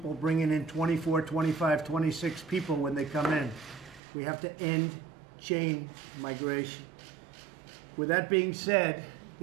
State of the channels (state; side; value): drops out; left; at 4.0 s